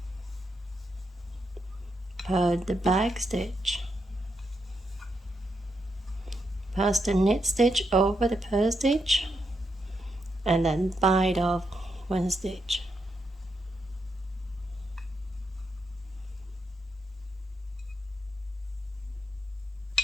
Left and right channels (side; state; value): both; normal; correlation 0.81